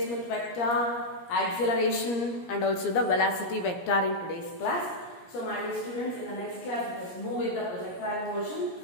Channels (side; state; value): right; late; 17 ms